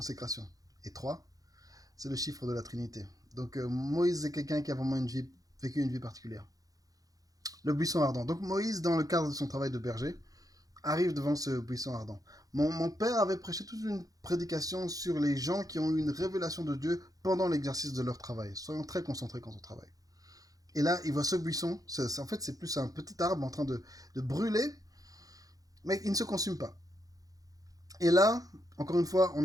Et 3, c'est le chiffre de la Trinité. Donc Moïse est quelqu'un qui a vraiment vécu une vie particulière. Le buisson ardent. Donc Moïse, dans le cadre de son travail de berger, arrive devant ce buisson ardent. Mon père avait prêché toute une prédication sur les gens qui ont eu une révélation de Dieu pendant l'exercice de leur travail. Soyons très concentrés quand on travaille. Et là, il voit ce buisson. En fait, c'est plus un petit arbre en train de brûler, mais il ne se consume pas. Et là, encore une fois,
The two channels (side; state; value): left; late; 0.17 ms